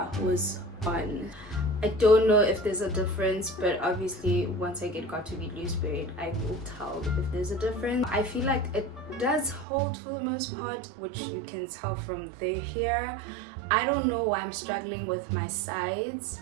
was on. I don't know if there's a difference, but obviously once I got to be loose braid, I will tell if there's a difference. I feel like it does hold for the most part, which you can tell from the hair. I don't know why I'm struggling with my sides,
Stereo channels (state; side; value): drops out; left; at 9.7 s